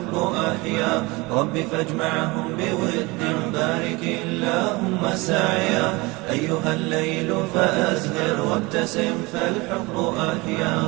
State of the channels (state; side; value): quieter; left; 24.1 dB